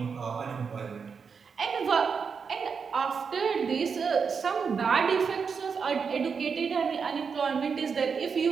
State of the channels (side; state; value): left; quieter; 5.9 dB